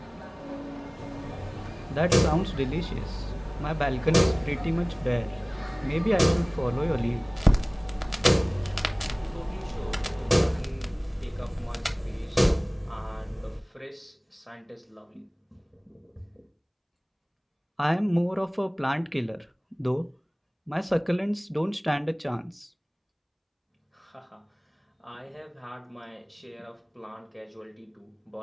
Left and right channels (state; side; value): identical; both; correlation 1.00